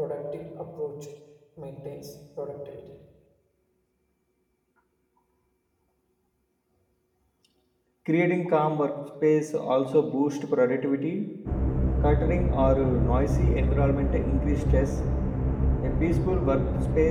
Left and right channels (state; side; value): identical; both; correlation 1.00